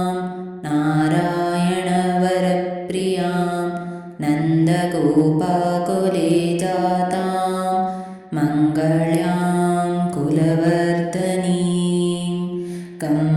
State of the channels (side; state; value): both; identical; correlation 1.00